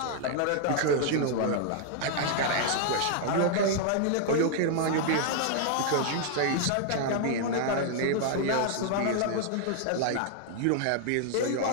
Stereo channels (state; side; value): different; both; correlation 0.00